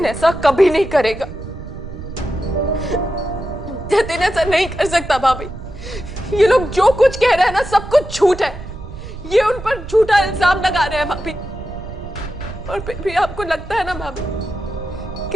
ऐसा कभी नहीं करेगा। जतिन ऐसा नहीं कर सकता भाभी। ये लोग जो कुछ कह रहे हैं ना, सब कुछ झूठ है। ये उन पर झूठा इल्जाम लगा रहे हैं भाभी। और फिर भी आपको लगता है ना भाभी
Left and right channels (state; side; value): noise; right; rumble, 12 dB below the sound